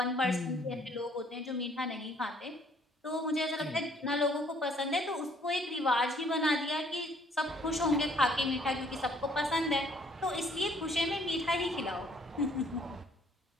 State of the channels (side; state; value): both; normal; correlation 0.62